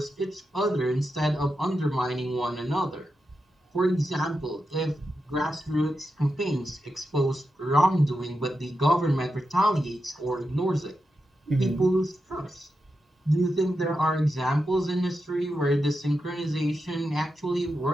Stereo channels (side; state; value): both; normal; correlation 0.88